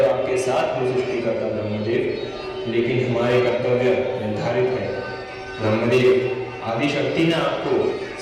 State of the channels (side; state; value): both; identical; correlation 1.00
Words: आपके साथ हूँ सृष्टिकर्ता ब्रह्मदेव, लेकिन हमारे कर्तव्य निर्धारित है। ब्रह्मदेव, आदि शक्ति ने आपको